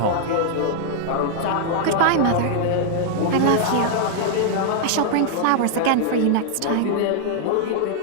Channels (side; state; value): both; different; correlation -0.01